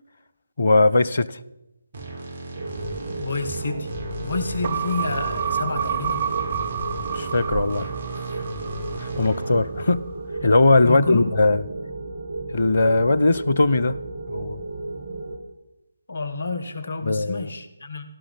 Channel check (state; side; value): inverted; both; correlation -0.85